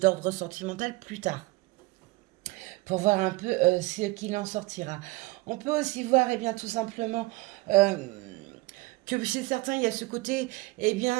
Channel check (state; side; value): quieter; left; 22.2 dB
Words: sentimental plus tard pour voir un peu ce qu'il en sortira. On peut aussi voir, eh bien, tout simplement, euh, que chez certains, il y a ce côté, eh bien,